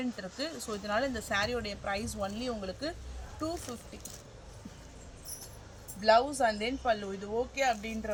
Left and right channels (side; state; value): both; identical; correlation 1.00